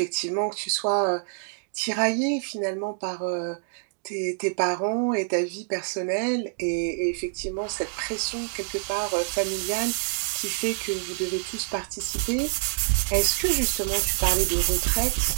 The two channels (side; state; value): left; silent; digital silence